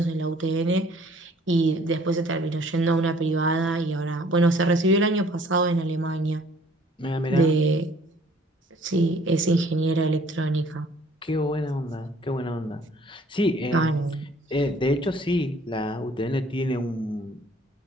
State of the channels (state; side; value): normal; both; correlation 0.56